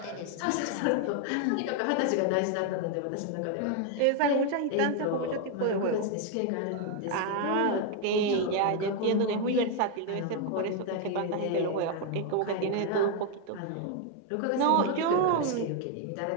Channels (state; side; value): different; both; correlation 0.01